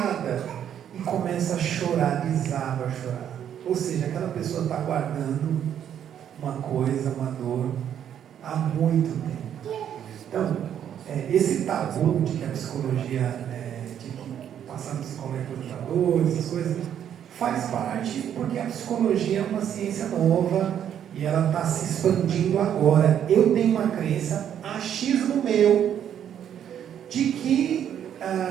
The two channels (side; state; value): left; quieter; 9.5 dB